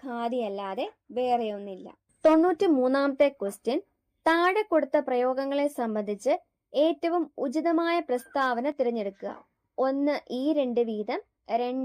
ഖാദിയല്ലാതെ വേറെയൊന്നില്ല. 93ാമത്തെ ക്വസ്റ്റ്യൻ, താഴെ കൊടുത്ത പ്രയോഗങ്ങളെ സംബന്ധിച്ച് ഏറ്റവും ഉചിതമായ പ്രസ്താവന തിരഞ്ഞെടുക്കുക. 1 ഈ 2 വീതം,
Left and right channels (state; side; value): identical; both; correlation 1.00